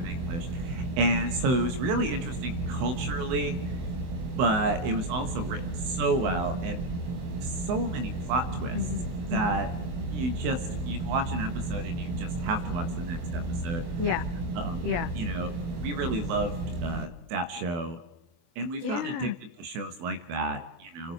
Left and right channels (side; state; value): left; late; 23 ms